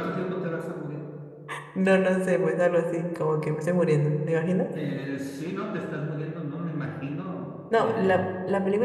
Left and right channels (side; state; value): both; identical; correlation 1.00